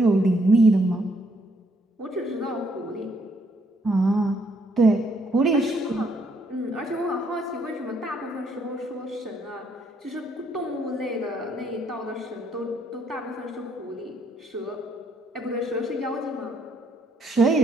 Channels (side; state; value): both; normal; correlation 0.70